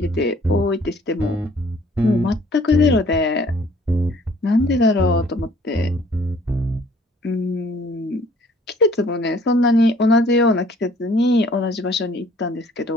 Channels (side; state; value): both; normal; correlation 0.57